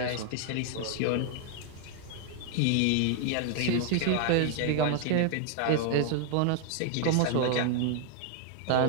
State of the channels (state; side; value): different; both; correlation 0.00